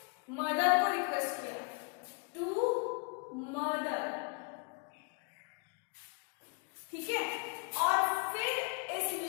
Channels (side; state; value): right; quieter; 34.4 dB